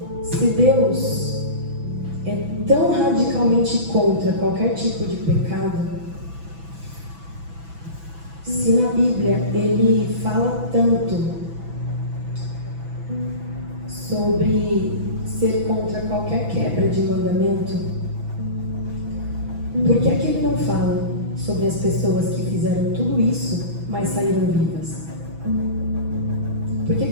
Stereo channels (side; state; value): left; late; 6.0 ms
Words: Se Deus é tão radicalmente contra qualquer tipo de pecado, se na Bíblia Ele fala tanto sobre ser contra qualquer quebra de mandamento, por que é que Ele não fala sobre as pessoas que fizeram tudo isso, mas saíram vivas? Por que